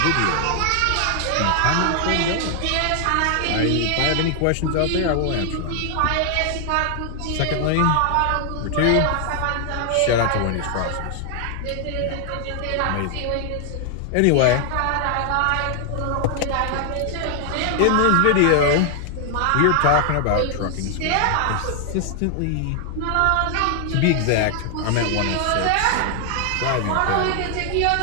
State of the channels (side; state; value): both; different; correlation 0.00